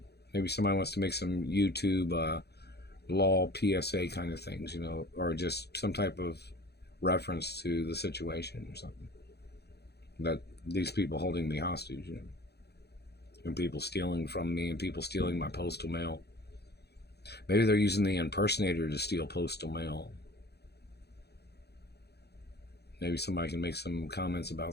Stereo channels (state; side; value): late; right; 0.48 ms